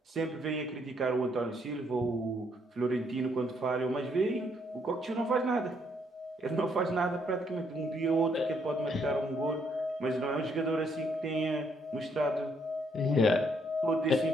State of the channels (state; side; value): normal; both; correlation 0.71